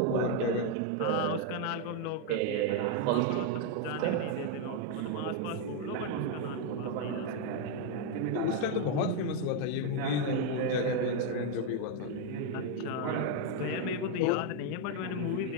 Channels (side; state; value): both; different; correlation 0.01